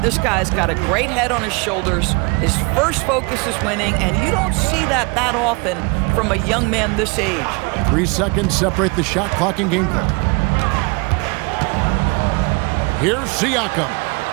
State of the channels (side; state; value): left; quieter; 29.6 dB